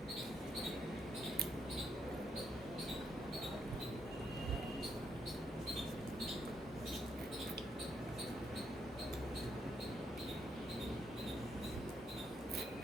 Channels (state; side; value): normal; both; correlation 0.76